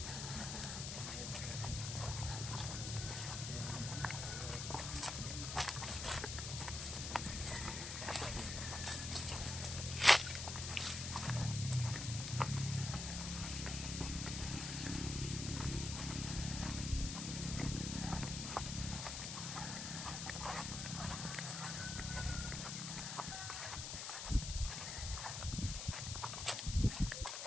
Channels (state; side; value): noise; left; hiss, 4 dB below the sound